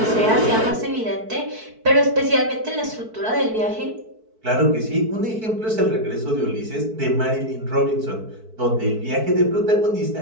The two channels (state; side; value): late; left; 4.6 ms